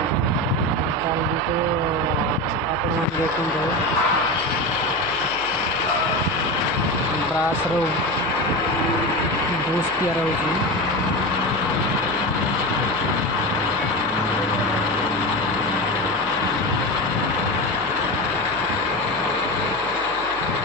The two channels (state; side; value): noise; left; hum, 20 dB below the sound